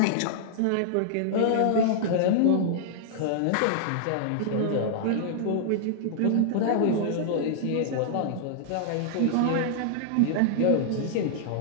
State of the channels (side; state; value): both; different; correlation -0.01